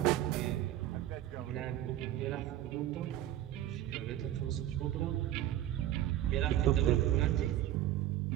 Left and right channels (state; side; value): quieter; left; 12.8 dB